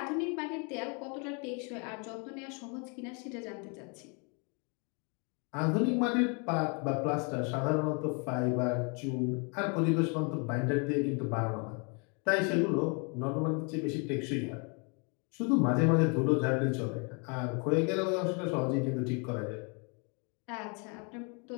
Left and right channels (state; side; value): quieter; right; 34.9 dB